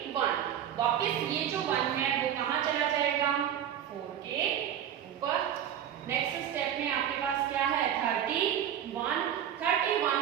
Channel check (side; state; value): left; quieter; 10.0 dB